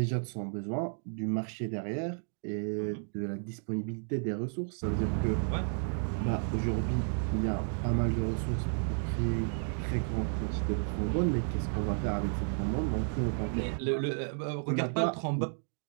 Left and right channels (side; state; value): left; silent; 56 dB below the other